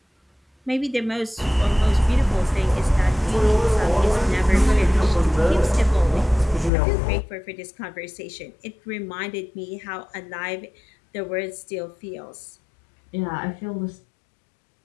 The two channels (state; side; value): drops out; right; at 6.7 s